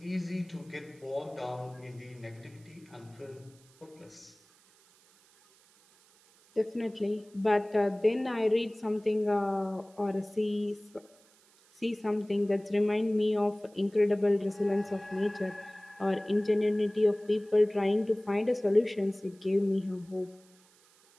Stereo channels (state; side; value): noise; right; hiss, 29 dB below the sound